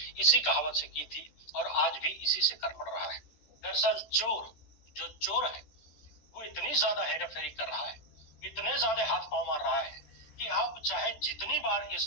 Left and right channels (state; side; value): late; right; 13 ms